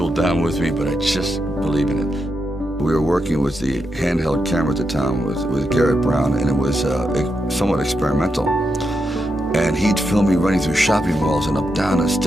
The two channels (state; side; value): normal; both; correlation 0.84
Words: down with me, but I just believe in it. We were working with the handheld camera at the time with Garrett Brown, and it was somewhat experimental. And he'd film me running through shopping malls and up down the